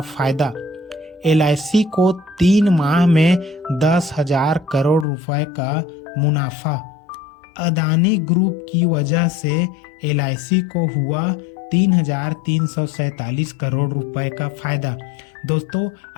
फायदा, एलआईसी को 3 माह में 10,000 करोड़ रुपए का मुनाफा। अदानी ग्रुप की वजह से एलआईसी को हुआ 3,347 करोड़ रुपए का फायदा। दोस्तों,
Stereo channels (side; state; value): right; drops out; at 5.1 s